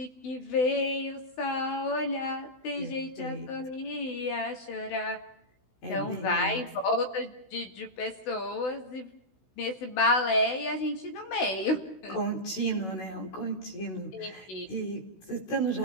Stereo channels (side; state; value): right; late; 16 ms